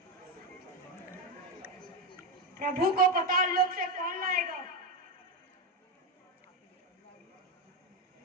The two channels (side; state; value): both; normal; correlation 0.11